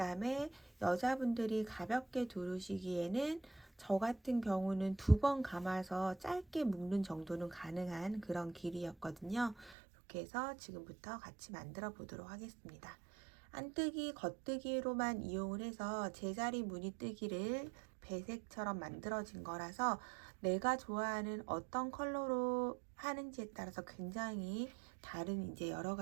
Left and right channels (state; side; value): drops out; left; at 9.8 s